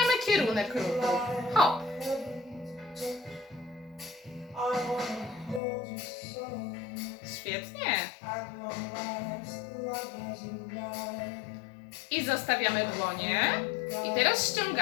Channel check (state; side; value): drops out; right; at 5.6 s